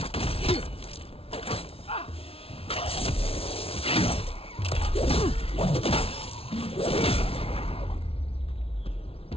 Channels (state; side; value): late; right; 0.27 ms